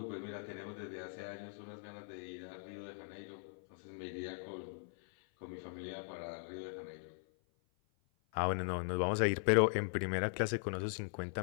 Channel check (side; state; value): right; silent; 51 dB below the other